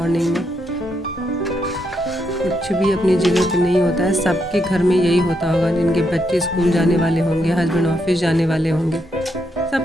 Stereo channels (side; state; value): both; normal; correlation 0.79